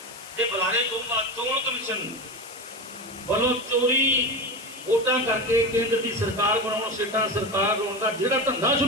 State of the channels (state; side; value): noise; left; hiss, 17 dB below the sound